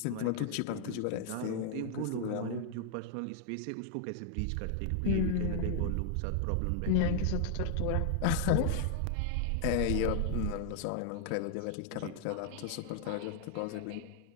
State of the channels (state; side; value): different; both; correlation 0.00